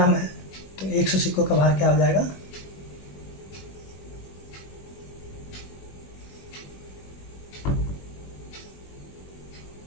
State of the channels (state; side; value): late; right; 21 ms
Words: है, तो 100 सिक्कों का भार क्या हो जाएगा,